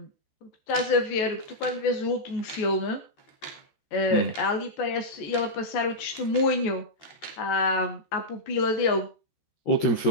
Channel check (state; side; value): late; right; 14 ms